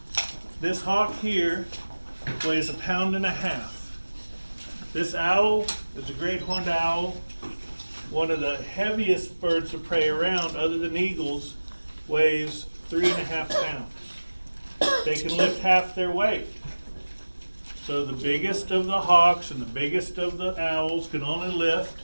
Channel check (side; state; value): both; inverted; correlation -1.00